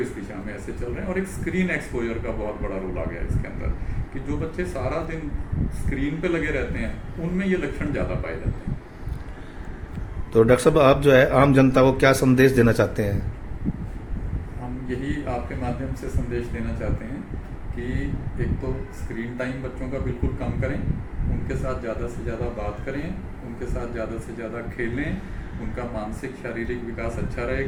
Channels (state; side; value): identical; both; correlation 1.00